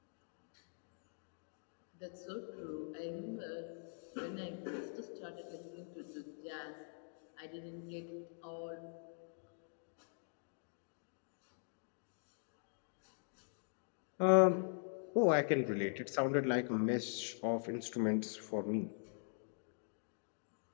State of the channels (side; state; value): right; silent; digital silence